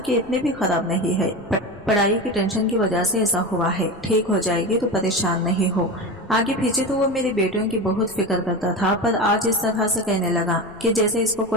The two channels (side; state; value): left; noise; rumble, 25 dB below the sound